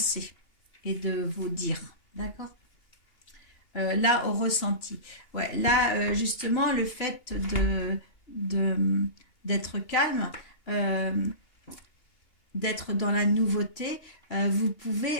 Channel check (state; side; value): late; right; 2.8 ms